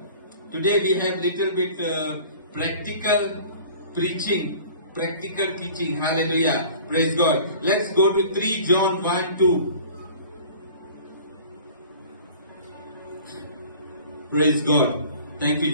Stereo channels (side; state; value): both; inverted; correlation -0.46